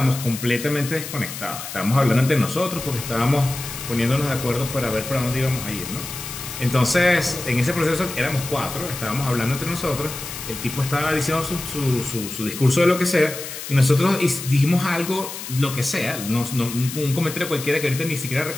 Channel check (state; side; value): noise; left; hiss, 9 dB below the sound